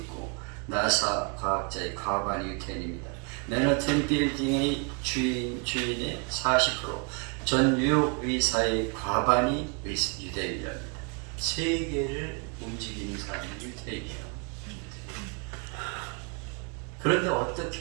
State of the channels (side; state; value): left; quieter; 35.6 dB